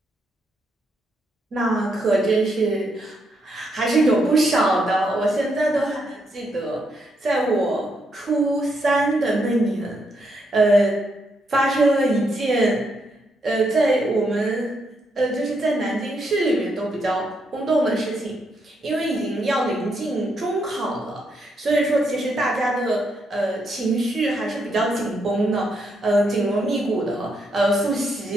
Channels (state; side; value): normal; both; correlation 0.78